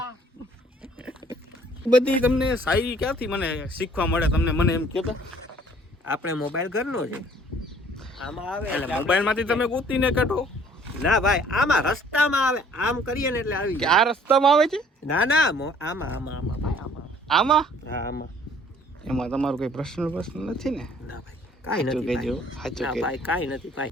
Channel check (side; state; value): both; normal; correlation 0.57